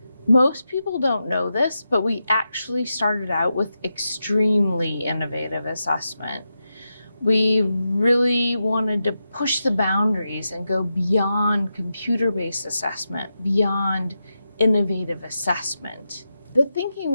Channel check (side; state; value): both; inverted; correlation -0.88